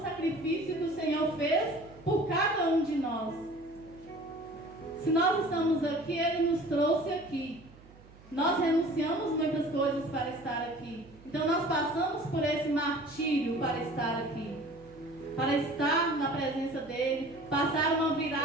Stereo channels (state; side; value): noise; right; hum, 23 dB below the sound